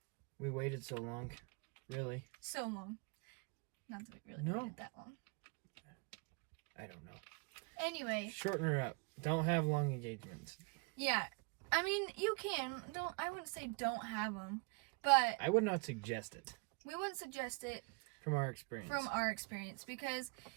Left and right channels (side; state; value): left; quieter; 32.0 dB